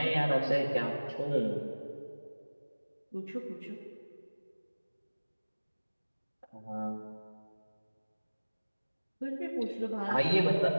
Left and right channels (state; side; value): inverted; both; correlation -1.00